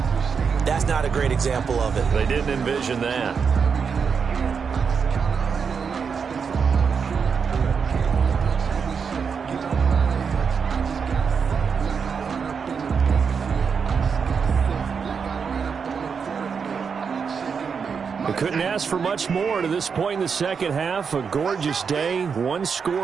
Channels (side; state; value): left; quieter; 6.1 dB